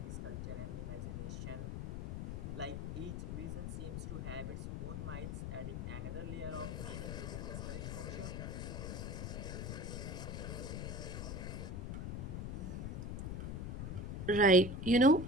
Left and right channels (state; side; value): noise; left; rumble, 4 dB below the sound